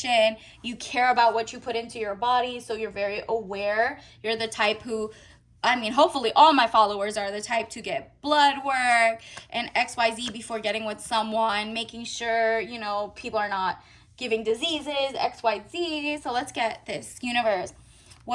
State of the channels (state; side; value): identical; both; correlation 1.00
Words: You care about what you put into your body, so you're very aware. You're the type who, I mean, hopefully all my followers are the type to get blood work and XYZ before getting with someone, making sure, people are not giving diseases, XYZ. So let's get this. Universe,